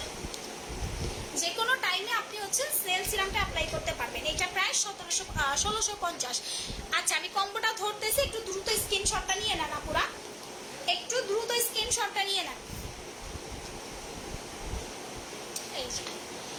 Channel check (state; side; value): identical; both; correlation 1.00